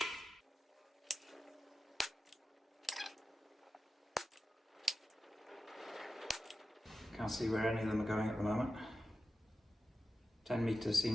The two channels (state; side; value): normal; both; correlation 0.93